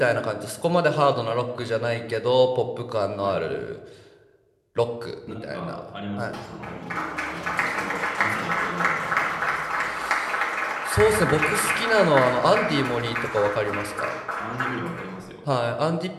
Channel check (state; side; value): identical; both; correlation 1.00